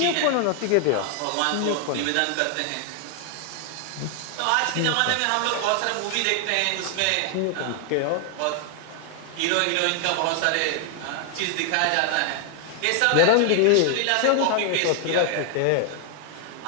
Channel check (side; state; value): both; different; correlation 0.00